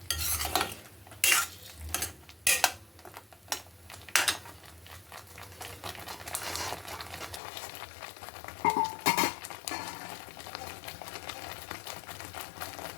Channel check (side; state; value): right; drops out; at 7.4 s